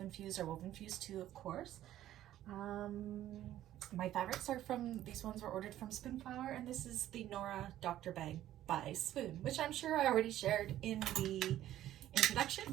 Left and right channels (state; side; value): quieter; left; 13.0 dB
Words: Fuse or Woven Fuse 2, of course. My fabrics are these ones were ordered from Spoonflower, and this is the Nora Doctor Bag by Swoon, which I'm sure I already shared in the